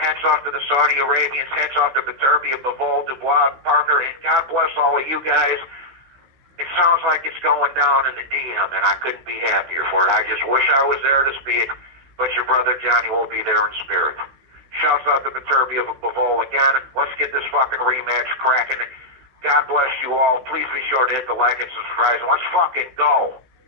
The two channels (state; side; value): late; left; 16 ms